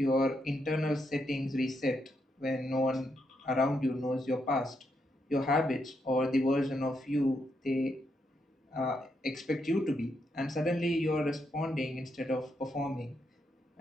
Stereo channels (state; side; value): normal; both; correlation 0.80